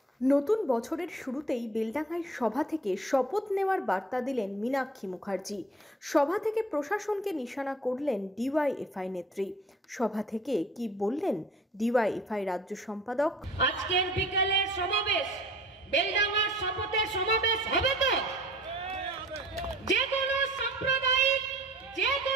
নতুন বছরের শুরুতেই বেলডাঙ্গায় সভা থেকে শপথ নেওয়ার বার্তা দিলেন মীনাক্ষী মুখার্জি। সভা থেকে প্রশাসনকে নিশানা করলেন ডিওয়াইএফআই নেত্রী। সভা থেকে কি বললেন ডিওয়াইএফআই রাজ্য সম্পাদক? আজকের বিকেলের সমাবেশ বেলডাঙ্গার শপথের সমাবেশ হবে তো? যে কোনো সাম্প্রদায়িক, যে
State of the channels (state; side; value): normal; both; correlation 0.50